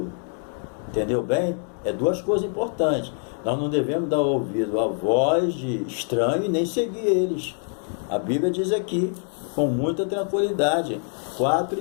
Entendeu bem? É 2 coisas importantes. Nós não devemos dar ouvido à voz de estranho e nem seguir eles. A Bíblia diz aqui, com muita tranquilidade,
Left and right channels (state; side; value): silent; right; 56 dB below the other